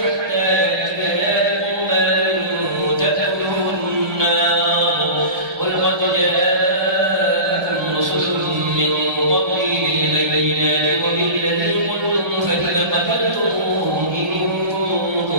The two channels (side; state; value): left; late; 1.3 ms